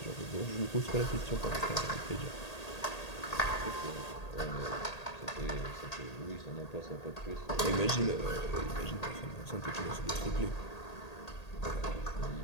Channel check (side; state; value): right; late; 1.8 ms